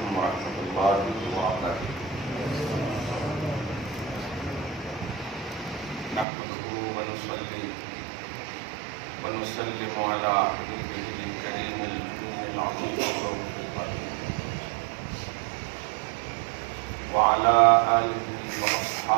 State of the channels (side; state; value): left; drops out; at 6.2 s